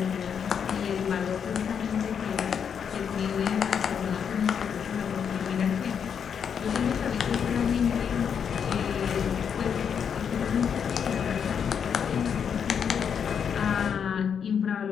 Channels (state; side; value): quieter; right; 7.4 dB